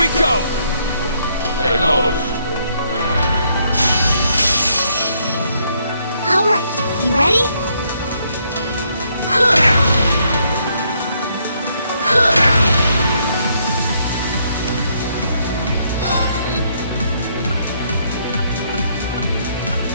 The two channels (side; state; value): both; inverted; correlation -0.72